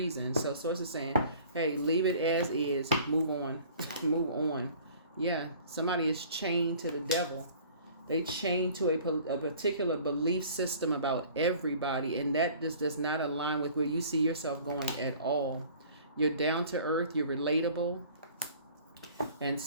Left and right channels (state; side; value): inverted; both; correlation -0.49